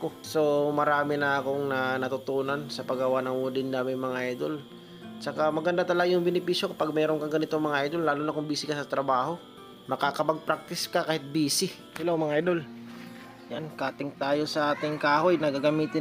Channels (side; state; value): both; identical; correlation 1.00